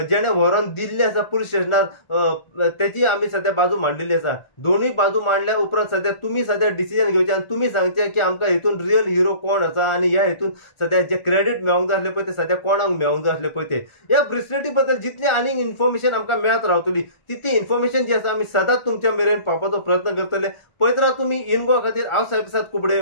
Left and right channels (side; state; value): right; late; 1.4 ms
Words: जेणे व्हरून दिल्ले आसा पुलीस स्टेशनार तेची आमी सद्या बाजू मांडलेली आसा. दोनूय बाजू मांडल्या उपरांत सद्या तुमी सद्या डिसिजन घेवचें आनी तुमी सांगचें की आमकां हेतून रियल हिरो कोण आसा आनी ह्या हेतून सद्या जे क्रेडीट मेळोंक जाय आसलें पळय ते सद्या कोणाक मेळोंक जाय आसलें पळय ते. ह्या ब्रेसलेटी बद्दल जितली आनीक इन्फॉर्मेशन आमकां मेळत रावतली तितली इन्फॉर्मेशन जी आसा आमी सदांच तुमच्या मेरेन पावपाचो प्रयत्न करतले. पळयत राव तुमी इनगो खातीर हांव साहेब कुबडे